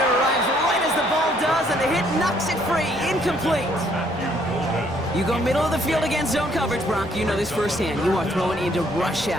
arrives right as the ball does, and the hit knocks it free. Incomplete. You go middle of the field against zone coverage, Brock. You know this firsthand. You are throwing into rush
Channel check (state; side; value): normal; both; correlation 0.66